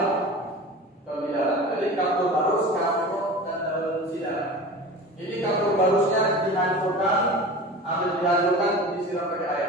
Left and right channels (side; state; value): both; normal; correlation 0.35